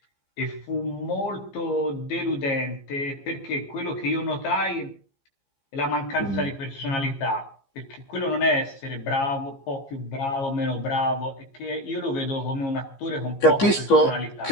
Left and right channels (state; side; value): late; right; 15 ms